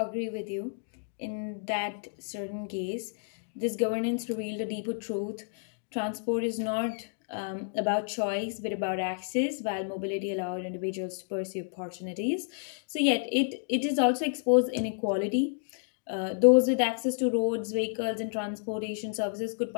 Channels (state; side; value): silent; right; digital silence